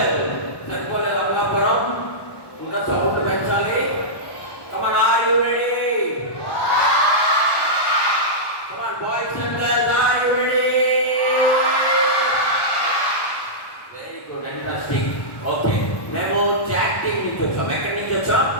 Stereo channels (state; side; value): late; right; 1.1 ms